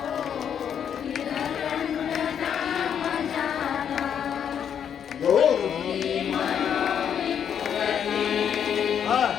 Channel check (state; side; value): quieter; right; 8.4 dB